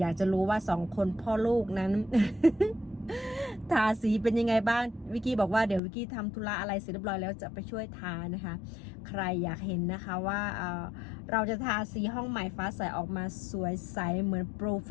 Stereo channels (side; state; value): right; drops out; at 5.8 s